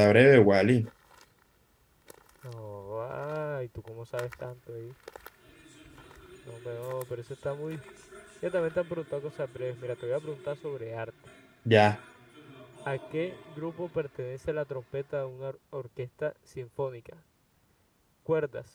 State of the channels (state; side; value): identical; both; correlation 1.00